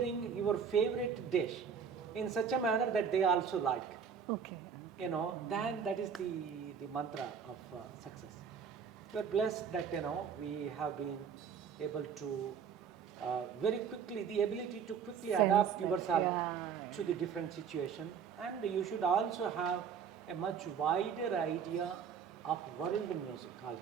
your favorite dish in such a manner that they also like. Okay. Then that is the mantra of success. We are blessed that we have been able to very quickly, the ability to quickly adapt yourself to the different situation, and you should also have a much wider idea of world music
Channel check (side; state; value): left; quieter; 6.9 dB